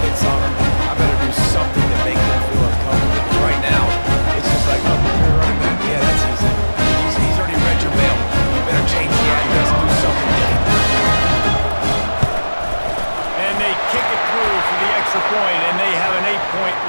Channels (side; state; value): both; inverted; correlation -1.00